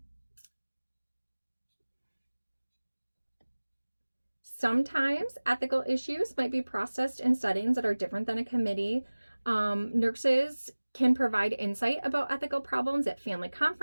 Sometimes ethical issues might be processed in settings that are different than a committee. Nurses can provide insight about ethical problems at family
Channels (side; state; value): both; inverted; correlation -1.00